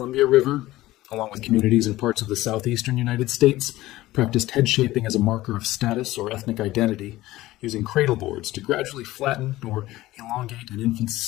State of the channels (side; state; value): right; quieter; 16.9 dB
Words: River, along with communities in parts of the southeastern United States, practiced head shaping as a marker of status or ethnic identity, using cradle boards to gradually flatten or elongate an infant's